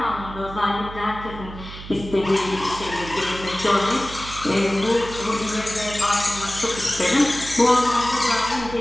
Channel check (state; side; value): noise; right; hum, 13 dB below the sound